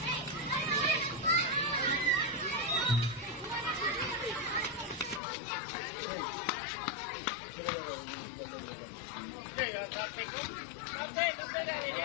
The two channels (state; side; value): drops out; right; at 5.2 s